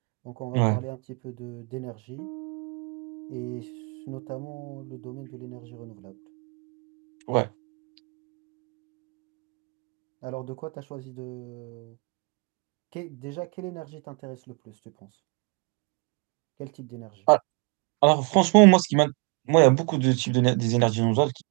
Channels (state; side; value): quieter; left; 35.0 dB